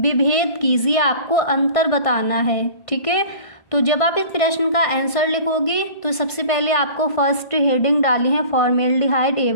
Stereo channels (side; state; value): right; late; 1.5 ms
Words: कीजिए, आपको अंतर बताना है। ठीक है, तो जब आप इस प्रश्न का आंसर लिखोगे तो सबसे पहले आपको फर्स्ट हेडिंग डाली है फॉर्मेल्डिहाइड